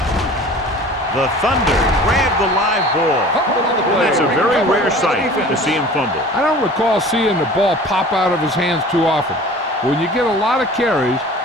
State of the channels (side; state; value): both; normal; correlation 0.43